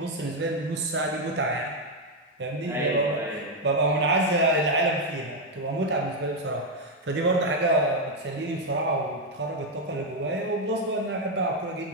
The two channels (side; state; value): both; normal; correlation 0.03